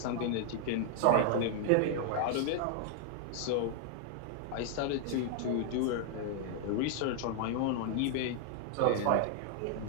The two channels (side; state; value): both; different; correlation 0.00